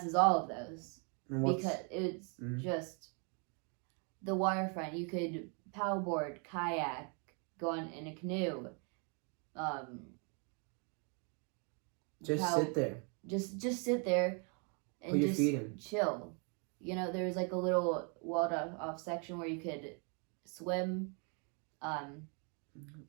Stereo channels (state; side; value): quieter; left; 37.5 dB